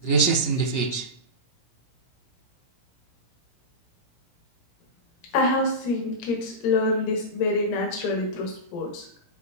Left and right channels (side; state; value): right; late; 17 ms